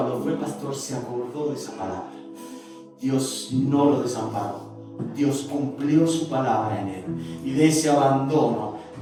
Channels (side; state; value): both; identical; correlation 1.00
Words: fue pastor se acordó de esa palabra. Dios no lo desamparó. Dios cumplió su palabra en él. Y de ese abandono